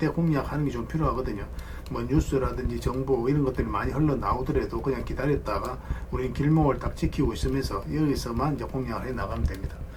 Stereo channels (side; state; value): both; identical; correlation 1.00